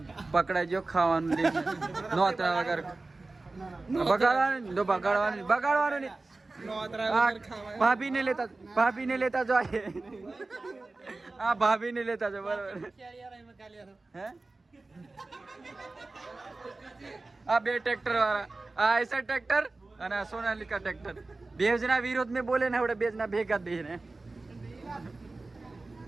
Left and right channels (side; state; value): left; quieter; 3.3 dB